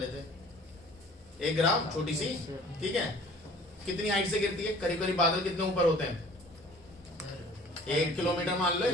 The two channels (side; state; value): both; normal; correlation 0.50